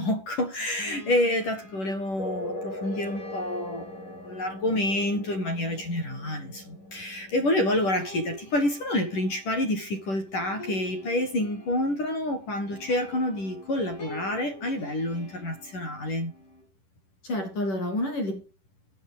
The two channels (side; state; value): right; late; 10 ms